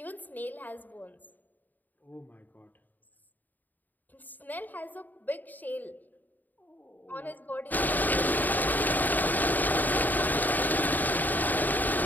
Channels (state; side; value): late; right; 0.086 ms